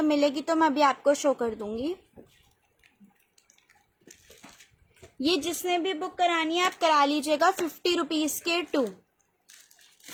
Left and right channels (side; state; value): both; identical; correlation 1.00